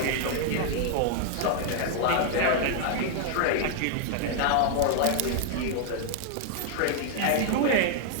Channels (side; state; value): both; different; correlation 0.00